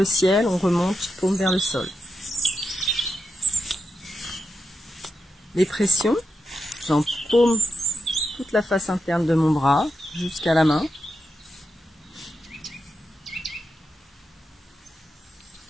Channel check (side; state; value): both; normal; correlation 0.86